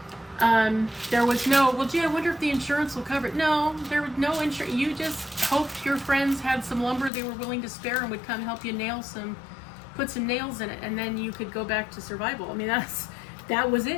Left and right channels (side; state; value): right; drops out; at 7.1 s